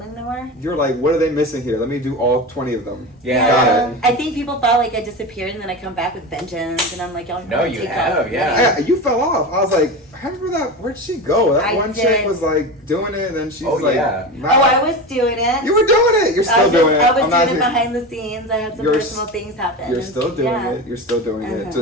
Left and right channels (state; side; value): normal; both; correlation 0.25